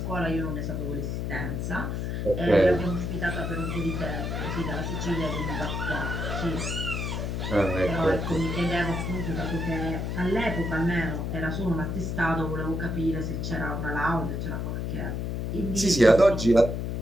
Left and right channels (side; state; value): left; noise; hum, 2 dB below the sound